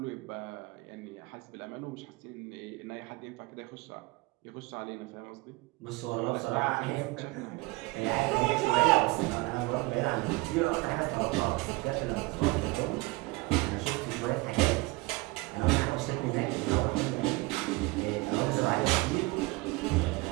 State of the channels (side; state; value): left; quieter; 23.1 dB